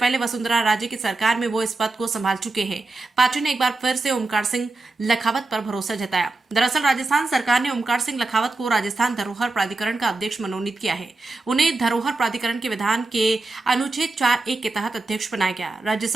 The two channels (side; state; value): left; quieter; 3.3 dB